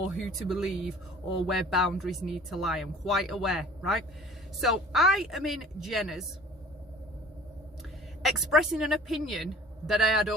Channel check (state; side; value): normal; both; correlation 0.48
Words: who to believe or where boundaries need to lie. I'm quite aware, right? So I am in Jenner's expressing an opinion that I had